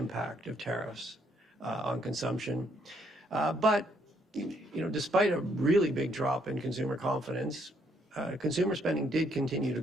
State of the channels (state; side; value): normal; both; correlation 0.70